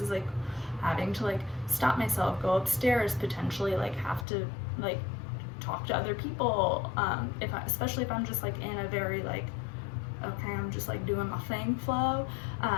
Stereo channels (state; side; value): drops out; right; at 4.2 s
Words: like having to like stop myself, go upstairs, potentially like have to like talk to other people, especially if I'm just like in a very like, okay, I'm just like doing my thing flow.